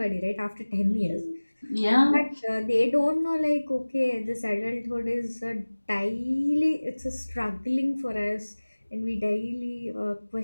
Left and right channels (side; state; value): both; inverted; correlation -1.00